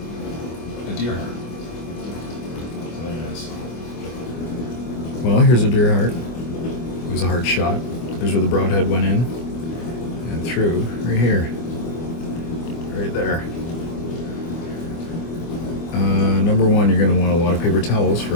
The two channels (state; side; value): late; right; 24 ms